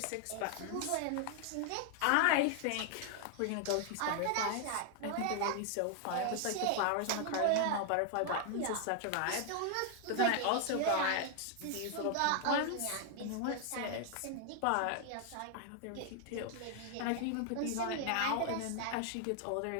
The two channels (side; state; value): both; different; correlation 0.00